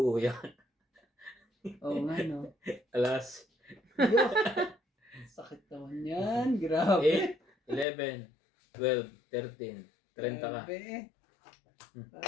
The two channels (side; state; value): right; drops out; at 7.9 s